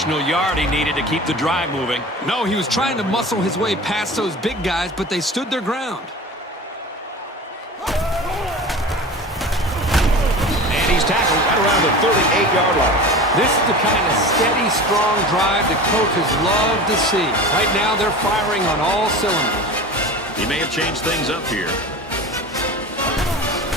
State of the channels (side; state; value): both; normal; correlation 0.34